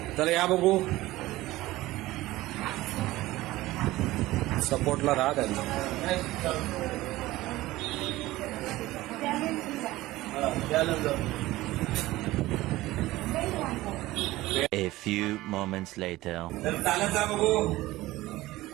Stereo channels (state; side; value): quieter; left; 17.7 dB